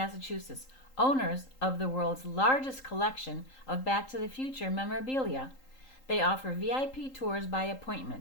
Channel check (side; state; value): right; late; 3.8 ms